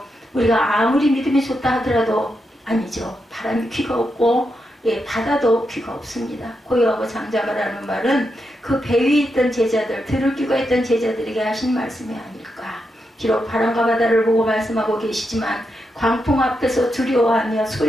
우리가 아무리 믿음이 좋다 하더라도 아니죠. 바람이 귀가 없고 바다도 귀가 없습니다. 고요하고 잠잠하라는 말은 그 배 위에 있던 제자들, 들을 귀가 있던 제자들에게 하신 말씀이 아닐까. 비록 바람과 바다를 보고 말씀하고 계시지만 광풍 앞에서 두려워하며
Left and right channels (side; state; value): both; normal; correlation 0.84